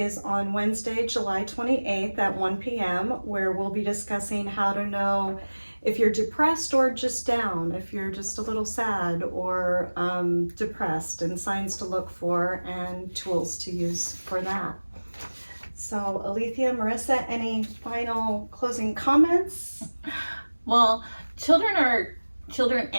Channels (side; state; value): both; inverted; correlation -1.00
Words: on Wednesday, July 28th at 1 p.m., where we'll be discussing how to know if you're depressed or just down, if you're just a little sad or depressed, and signs to look for and tools to use for that. So, Alethea, Marissa, any final closing comments? Well, children